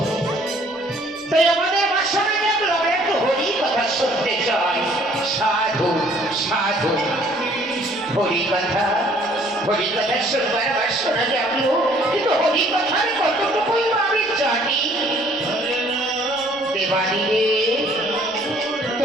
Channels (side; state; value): left; noise; rumble, 30 dB below the sound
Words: তাই আমাদের বাসায় দেখলাম একটু হরি কথা শুনতে চাই। সাধু সাধু হরি কথা শুনবার আবার শোনা যাবো, কিন্তু হরি কথার কতটুকুই আমি জানি। দেবাদিলে